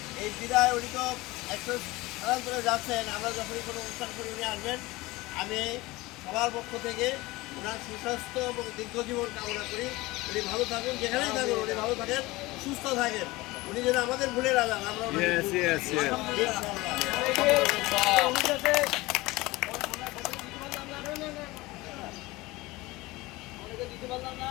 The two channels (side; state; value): right; quieter; 20.7 dB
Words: এই বিদায় উনি তো একটু স্থানান্তরে যাচ্ছেন, আমরা যখনই কোনো অনুষ্ঠান করি উনি আসবেন। আমি সবার পক্ষ থেকে ওনার সুস্বাস্থ্য এবং দীর্ঘজীবন কামনা করি। উনি ভালো থাকুন, যেখানেই থাকুন উনি ভালো থাকেন, সুস্থ থাকেন। উনি যেন আমাদের ভুলে না যান, আমরা